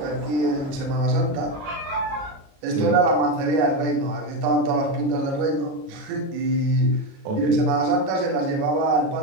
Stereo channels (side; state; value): left; late; 37 ms